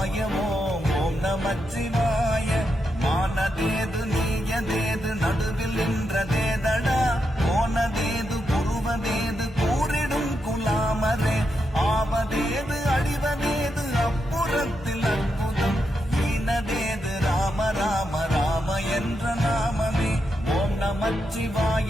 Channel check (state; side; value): normal; both; correlation 0.84